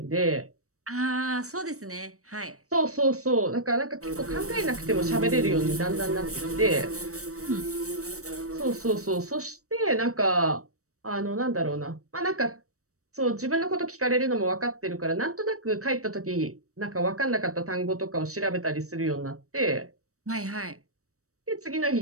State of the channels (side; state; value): left; late; 0.65 ms